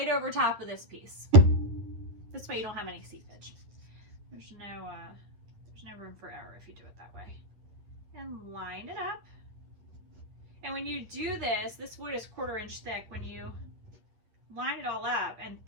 over top of this piece. This way you don't have any seepage. There's no room for error if you do it that way. And line it up. And when you do this, this wood is 1/4 inch thick. When you line it all up and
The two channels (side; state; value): left; late; 9.4 ms